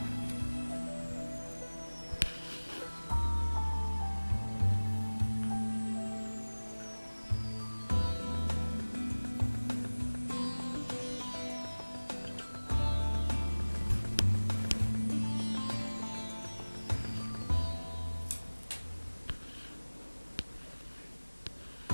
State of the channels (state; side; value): inverted; both; correlation -1.00